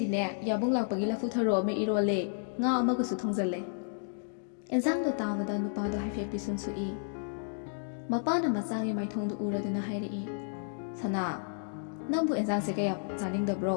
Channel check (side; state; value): right; silent; digital silence